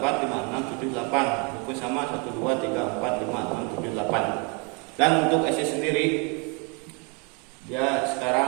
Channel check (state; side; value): quieter; left; 33.4 dB